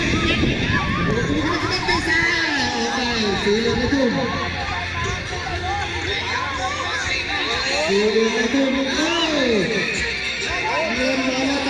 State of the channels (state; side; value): identical; both; correlation 1.00